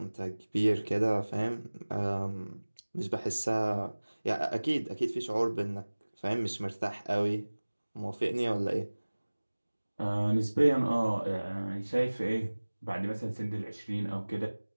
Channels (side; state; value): both; inverted; correlation -1.00